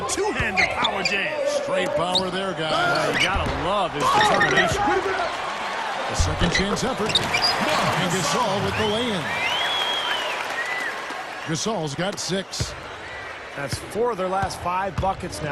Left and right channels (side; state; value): both; identical; correlation 1.00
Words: two-handed power jam. Great power there, guys. You gotta love his determination. A second chance effort. And Gasol with the lay-in. Gasol's got 6. That's 4 of their last 5 buckets